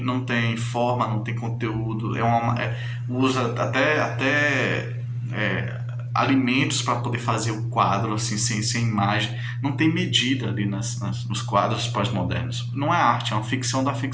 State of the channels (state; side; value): identical; both; correlation 1.00